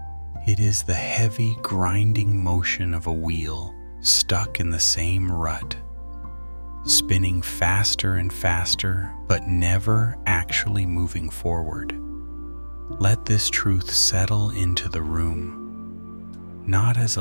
It is the heavy grinding motion of a wheel stuck in the same rut, spinning faster and faster, but never actually moving forward. Let this truth settle into the room, not as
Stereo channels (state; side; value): inverted; both; correlation -1.00